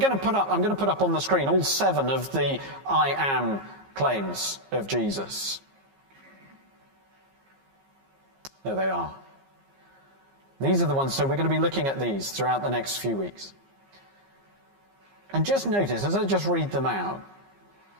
to put up on the screen all 7 of the I am claims of Jesus. There they are. These are the ones, so we're going to be looking at these throughout the next few weeks. And just notice, as I just read them out,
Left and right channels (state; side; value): late; left; 15 ms